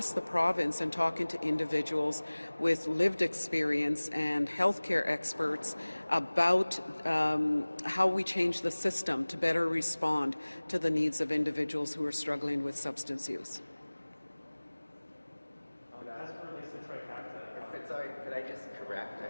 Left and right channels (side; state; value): both; inverted; correlation -1.00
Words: the province and talking to individuals with lived experience and healthcare experts about how we change the system to better respond to the needs of individuals who are struggling with substance use. As it relates to trifecta, Sorry, could I just correct?